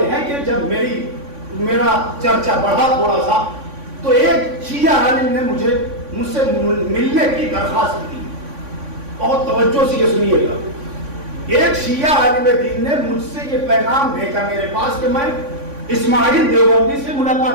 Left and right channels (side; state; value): left; late; 3.5 ms